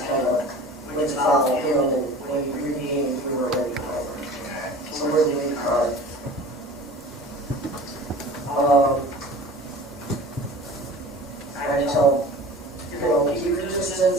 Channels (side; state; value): both; normal; correlation 0.41